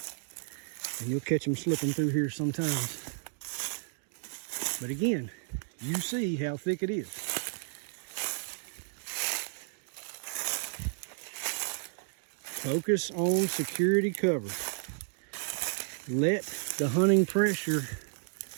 and you'll catch them slipping through here sometimes. But again, you see how thick it is. Focus on security cover. Let the hunting pressure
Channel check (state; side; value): silent; left; 56 dB below the other